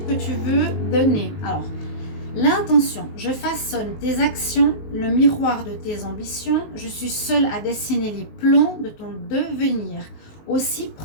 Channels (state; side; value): late; right; 19 ms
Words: que tu veux donner? Alors, l'intention, je façonne tes actions, le miroir de tes ambitions. Je suis seule à dessiner les plans de ton devenir. Aussi,